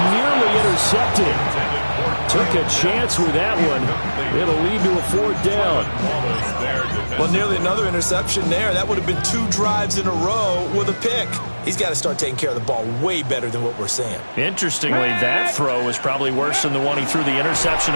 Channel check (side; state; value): both; inverted; correlation -1.00